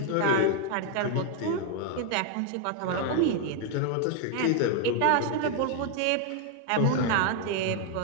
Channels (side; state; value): both; different; correlation 0.00